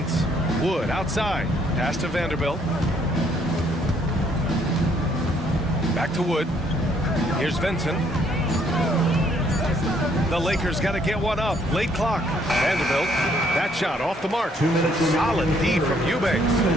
Wood outside. Pass to Vanderbilt. Back to Wood. Here's Vincent. The Lakers got to get one up. Late clock. Vanderbilt. That shot off the mark. Solid D from Eubanks.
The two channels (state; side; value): normal; both; correlation 0.67